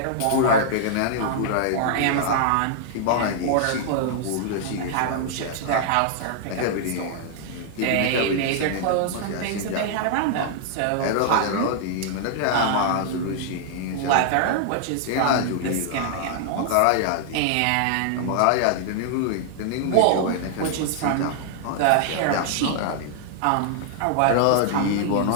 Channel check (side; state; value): both; different; correlation -0.01